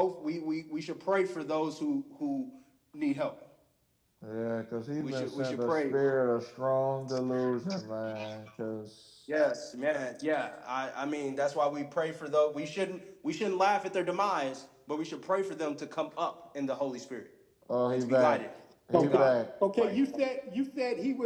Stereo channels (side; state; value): both; identical; correlation 1.00